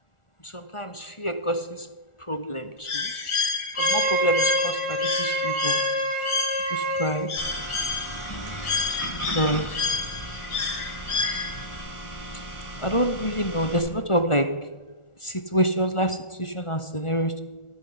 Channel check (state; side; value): late; right; 1.4 ms